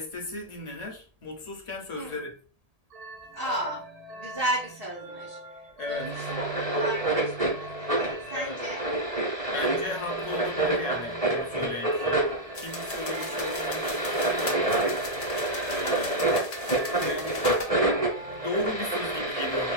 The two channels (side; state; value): left; late; 1.8 ms